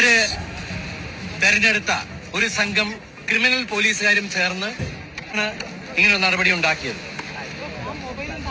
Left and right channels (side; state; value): both; identical; correlation 1.00